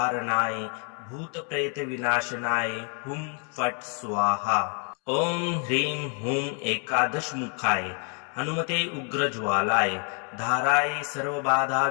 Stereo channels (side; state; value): right; quieter; 35.9 dB